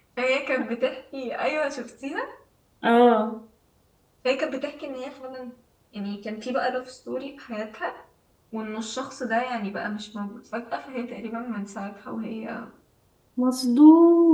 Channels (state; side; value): identical; both; correlation 1.00